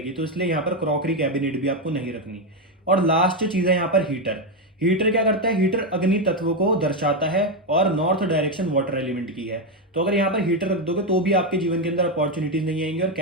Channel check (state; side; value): normal; both; correlation 0.07